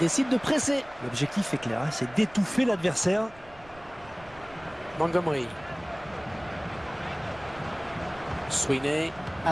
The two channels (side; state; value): right; noise; rumble, 23 dB below the sound